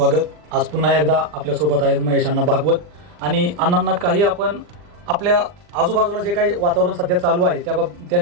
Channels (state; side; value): late; left; 40 ms